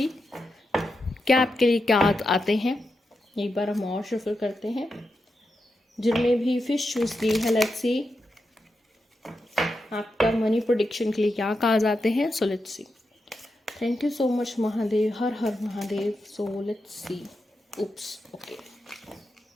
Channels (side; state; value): both; normal; correlation 0.87